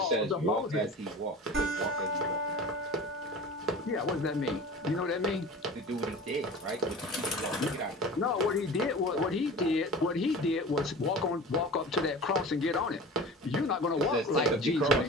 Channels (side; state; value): both; normal; correlation 0.36